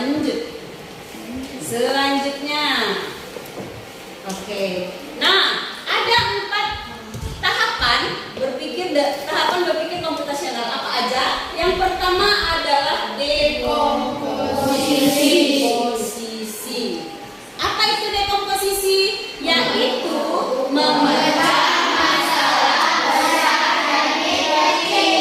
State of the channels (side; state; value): both; identical; correlation 1.00